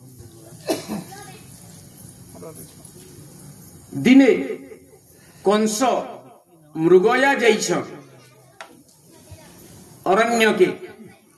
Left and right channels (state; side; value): identical; both; correlation 1.00